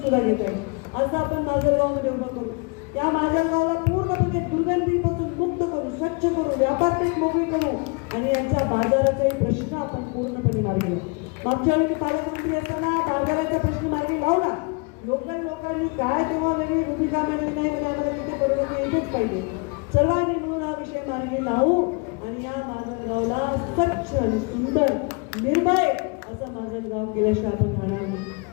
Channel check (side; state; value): right; quieter; 31.4 dB